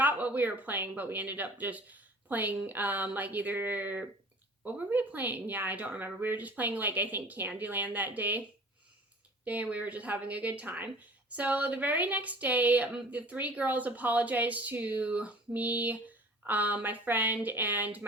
what we were playing, but we ended up just playing like either what were we playing? Yeah, I don't remember. We were just playing like I think Candyland that day. And we were just having a good time. So the very next day, the three girls apologized to me, my friend, and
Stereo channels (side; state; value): both; normal; correlation 0.46